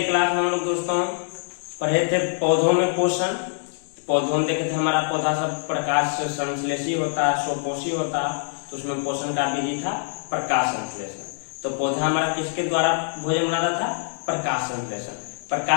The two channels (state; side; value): silent; right; digital silence